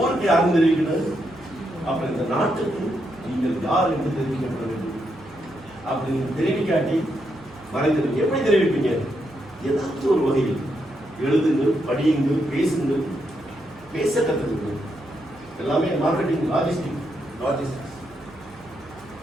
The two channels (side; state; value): both; normal; correlation 0.80